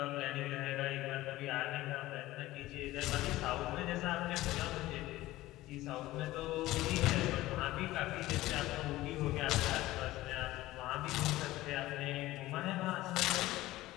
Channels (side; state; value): right; quieter; 17.0 dB